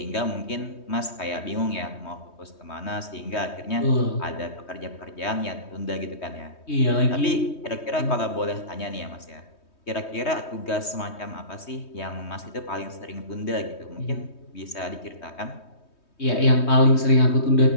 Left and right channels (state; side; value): late; right; 3.2 ms